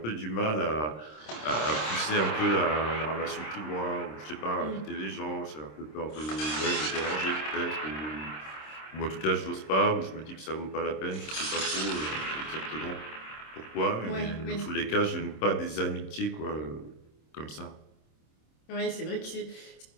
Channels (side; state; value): right; late; 26 ms